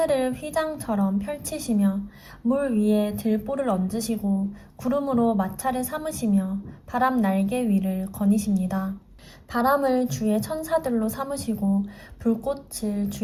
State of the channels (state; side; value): identical; both; correlation 1.00